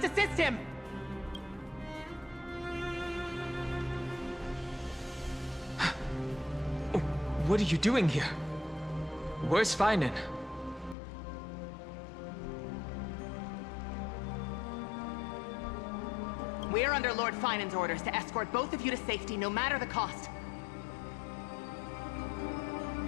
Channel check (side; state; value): right; drops out; at 11.0 s